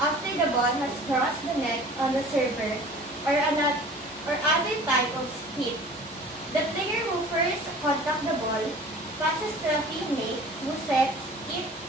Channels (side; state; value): both; normal; correlation 0.44